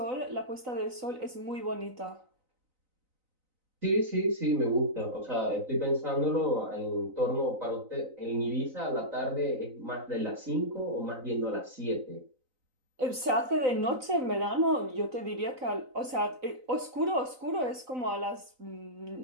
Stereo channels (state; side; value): late; left; 3.9 ms